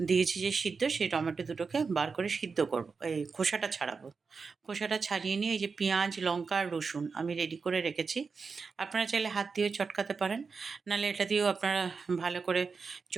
দিয়েছি যে সিদ্ধ, সেই টমেটো দুটোকে বার করে সিদ্ধ করবো, এই খোসাটা ছাড়াবো। খোসাটা ছাড়িয়ে নিয়ে এই যে পেঁয়াজ, লঙ্কা আর রসুন আমি রেডি করে রেখেছি। আপনারা চাইলে হাত দিয়েও চটকাতে পারেন, নাহলে এটা দিয়েও আপনারা ভালো করে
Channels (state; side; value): quieter; left; 5.0 dB